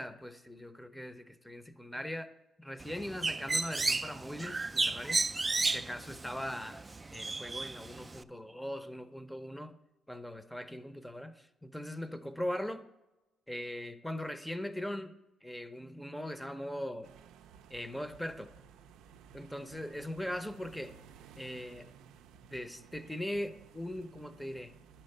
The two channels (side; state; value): both; normal; correlation 0.95